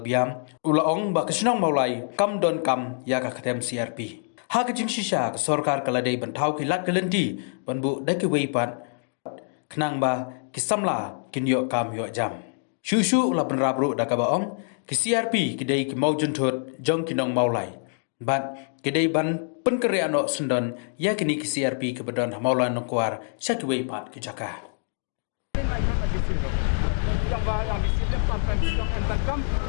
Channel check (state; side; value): silent; right; digital silence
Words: Biam ulaong ba kesinong maulai kam don kam ya ka ketem CRP ha kejing shisha ka sorkar kaladai ban thau ki lat kelenti ban bu dai ki weipat kenang ba ki samla kin yo kam yo jam Shushu la ban rabru da ka baong ki CRP ki dai ki maujun thot jong kinong maulai bat ki dai ban pen kereano sendon ya kini ki CRP ki bedon maulai nongkwar syaki weipat ki jaka yang di sini sampai bilang entar kam